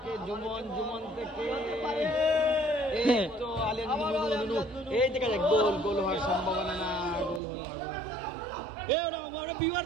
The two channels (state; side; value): drops out; left; at 7.4 s